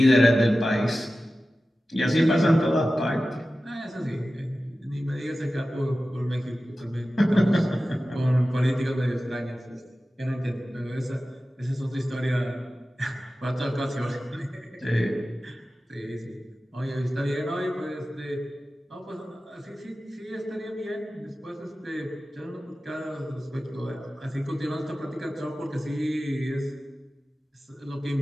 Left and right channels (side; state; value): both; normal; correlation 0.95